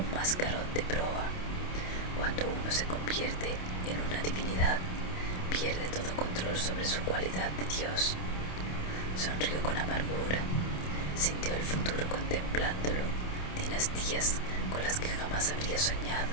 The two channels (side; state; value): right; late; 27 ms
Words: mascarón de proa. Cuando uno se convierte en una divinidad, pierde todo control sobre su cualidad de Dios. Sonrió con amargura, sintió el futuro contemplándolo, dinastías con las que jamás habría soñado.